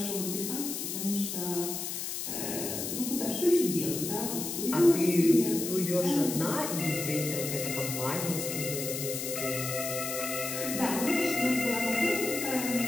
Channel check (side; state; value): left; noise; hiss, 4 dB below the sound